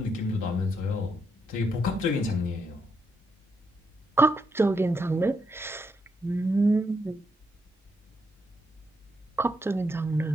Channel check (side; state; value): both; normal; correlation 0.79